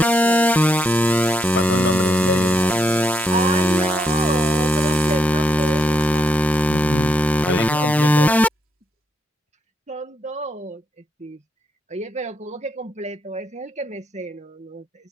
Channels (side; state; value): both; normal; correlation 0.78